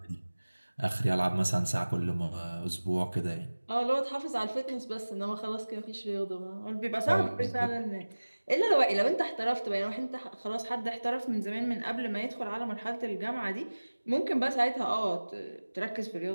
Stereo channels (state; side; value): inverted; both; correlation -1.00